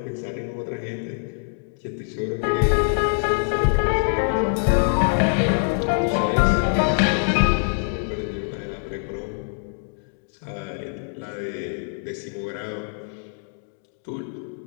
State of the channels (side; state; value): right; silent; 62 dB below the other